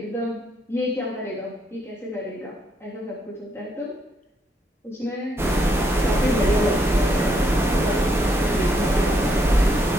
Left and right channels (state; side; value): normal; both; correlation 0.75